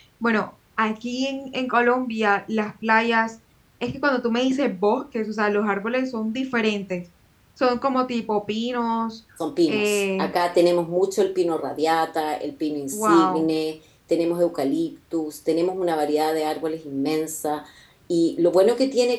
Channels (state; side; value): identical; both; correlation 1.00